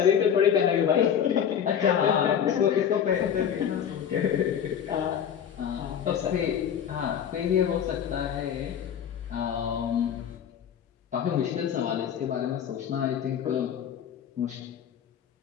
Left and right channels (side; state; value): right; quieter; 8.6 dB